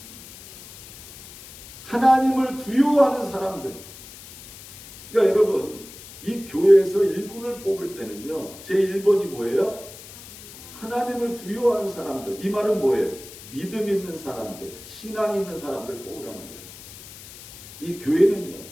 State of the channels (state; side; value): noise; left; hiss, 17 dB below the sound